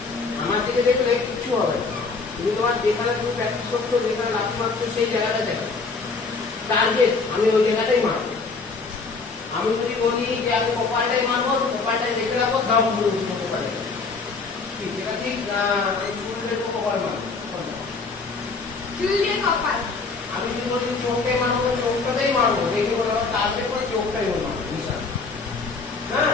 আমার দিকে দেখলে কিছু হবে না। তুমি তোমার যেখানে তুমি প্র্যাকটিস করছো, যেখানে লাথি মারছো সেই জায়গাটা দেখো, টার্গেট আমি ওই জায়গাটাই মারবো। আমি যদি বলি যে আমি কপালটাই মারবো, তো কপালটাই দেখে রাখবো, দাম পুরো কপালে ঠিক এটা ঠিক না? চুল দিয়ে কপাল মারবো, চুল দিয়ে কপাল। আমি যদি বলি চোখটাই মারবো, চোখটাতেই মারবো, দেখি বলো টার্গেট করে চোখটাই মারবো, নিশান। হ্যাঁ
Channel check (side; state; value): right; quieter; 4.3 dB